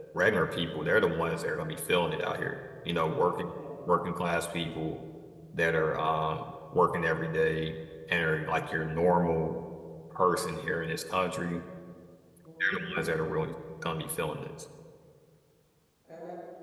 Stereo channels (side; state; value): both; identical; correlation 1.00